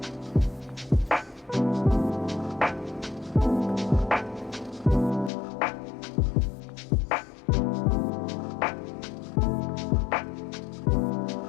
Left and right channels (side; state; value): right; drops out; at 5.3 s